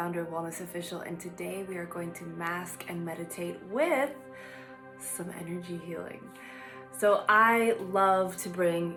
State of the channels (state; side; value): identical; both; correlation 1.00